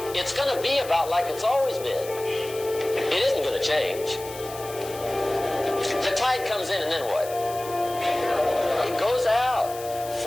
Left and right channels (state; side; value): noise; left; hiss, 14 dB below the sound